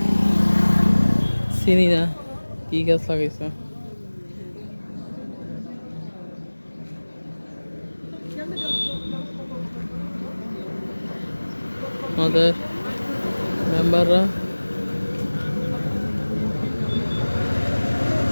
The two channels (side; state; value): both; inverted; correlation -1.00